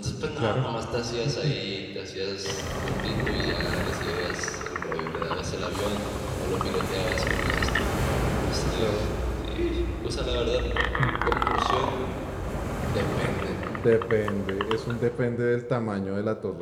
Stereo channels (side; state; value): both; identical; correlation 1.00